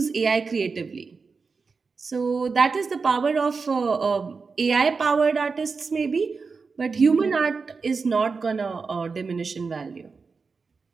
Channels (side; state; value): left; quieter; 4.7 dB